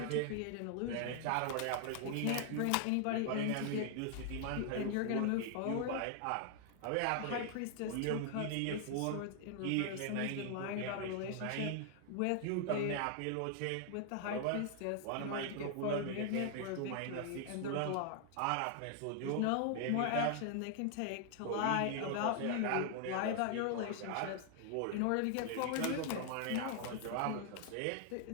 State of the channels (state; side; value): different; both; correlation 0.00